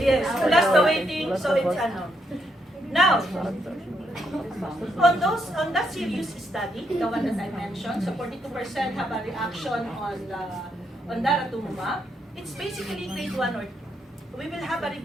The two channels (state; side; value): normal; both; correlation 0.77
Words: Yes, plus the waiting, so it's ano. Now, on that serious study, the one that I mentioned, so 42% have a reaction on Daratumumab. It's basically grade 1 or 2. We will have a